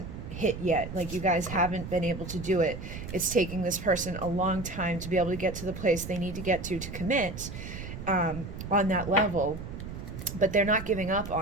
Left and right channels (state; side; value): noise; right; rumble, 9 dB below the sound